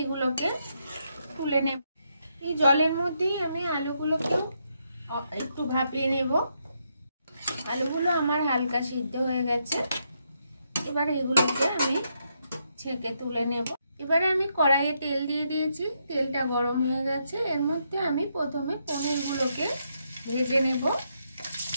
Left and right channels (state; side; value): inverted; both; correlation -0.79